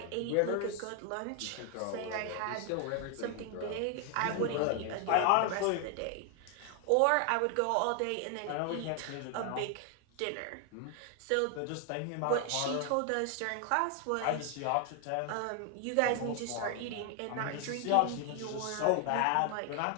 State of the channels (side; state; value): both; different; correlation 0.00